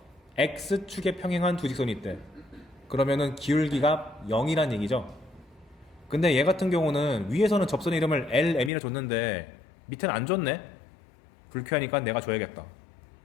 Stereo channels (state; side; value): drops out; right; at 8.7 s